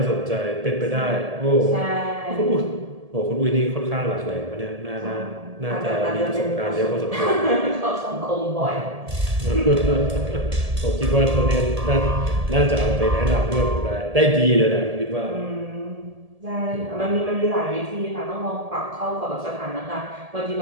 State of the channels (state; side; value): late; left; 1.7 ms